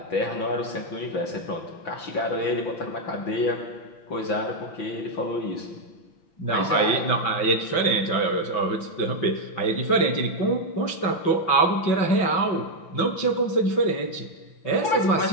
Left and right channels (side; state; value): right; late; 6.0 ms